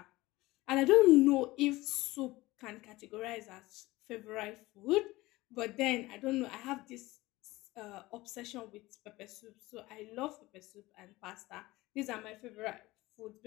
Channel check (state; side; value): quieter; right; 19.4 dB